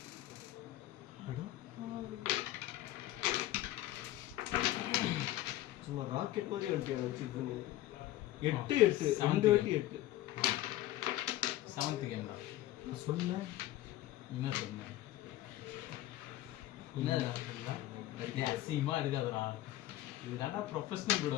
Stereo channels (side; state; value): right; quieter; 15.0 dB